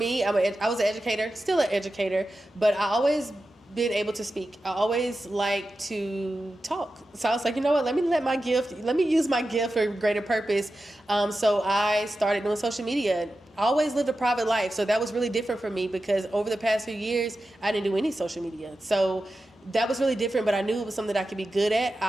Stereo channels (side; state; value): both; normal; correlation 0.92